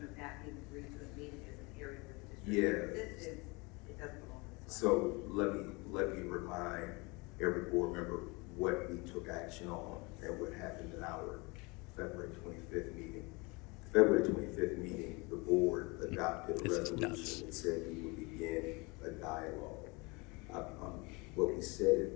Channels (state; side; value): quieter; right; 27.1 dB